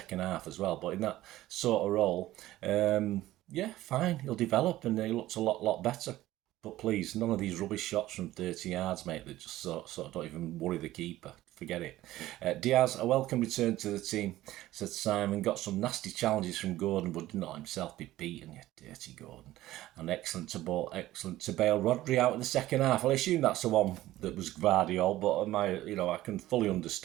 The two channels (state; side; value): quieter; left; 15.6 dB